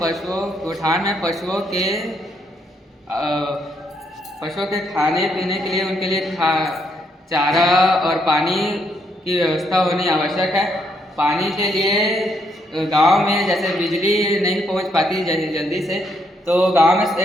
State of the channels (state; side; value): normal; both; correlation 0.74